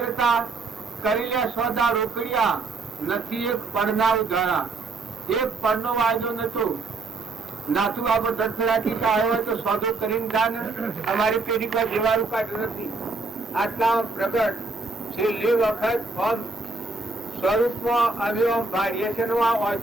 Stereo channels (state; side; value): quieter; left; 3.6 dB